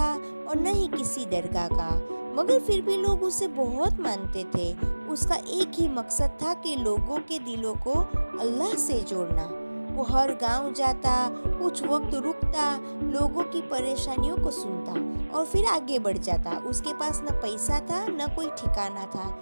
और न ही किसी दरगाह का, मगर फिर भी लोग उसे बहुत मानते थे। उसका एक ही मकसद था कि लोगों के दिलों को अल्लाह से जोड़ना। वो हर गांव जाता, कुछ वक्त रुकता, लोगों की परेशानियों को सुनता और फिर आगे बढ़ जाता। उसके पास न पैसा था न कोई ठिकाना था,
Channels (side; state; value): both; inverted; correlation -1.00